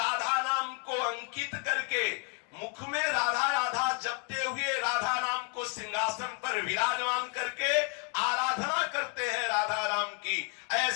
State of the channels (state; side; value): quieter; right; 38.6 dB